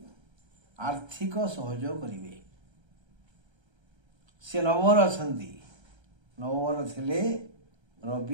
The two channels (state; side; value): late; left; 1.3 ms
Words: आर्थिक सहयोग करेंगे। से नववर अच्छा नववर थे